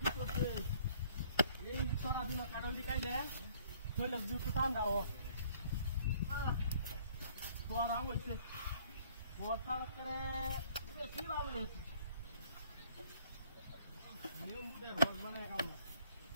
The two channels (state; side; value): inverted; both; correlation -0.59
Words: করছে এই চোরা দিন কাটলটি কাইলে কইলে দুটো টান দাও চোরা হইছে ওটা করে বেশি লাভ হইছে নিয়ম বুঝে রোজ মানে কাম